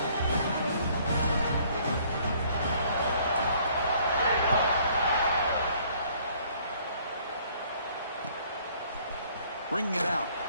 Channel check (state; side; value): inverted; both; correlation -0.60